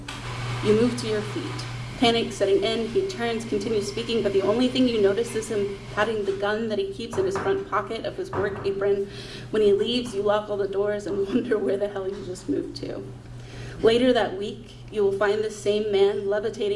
You move to your feet. Panic setting in, he turns, continues speaking, but the only thing you notice is him patting the gun that he keeps in his front pocket of his work apron. When he leaves, you lock all the doors and wonder where the hell you just moved to. Later that week, you will find the same man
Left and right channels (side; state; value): both; identical; correlation 1.00